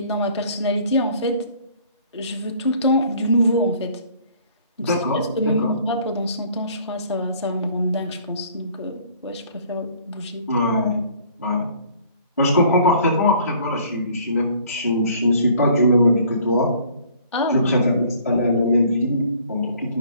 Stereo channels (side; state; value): both; inverted; correlation -0.56